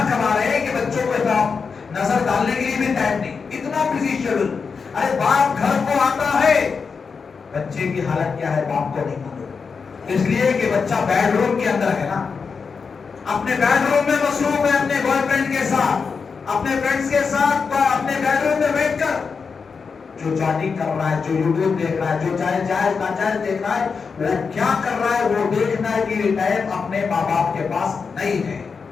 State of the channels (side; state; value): right; quieter; 5.4 dB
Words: کما رہے ہیں کہ بچوں کو نظر ڈالنے کے لیے بھی ٹائم نہیں. اتنا بزی شیڈول. ارے باپ گھر کو آتا ہے، بچے کی حالت کیا ہے باپ کو نہیں معلوم. اس لیے کہ بچہ بیڈ روم کے اندر ہے نا، اپنے بیڈ روم میں مصروف ہے، اپنے بوائے فرینڈ کے ساتھ، اپنے فرینڈز کے ساتھ اپنے بیڈ روم میں بیٹھ کر جو چیٹنگ کر رہا ہے، جو یوٹیوب دیکھ رہا ہے، جو جائز ناجائز دیکھ رہا ہے، وہ کیا کر رہا ہے وہ دیکھنا کی ٹائم اپنے ماں باپ کے پاس نہیں ہے.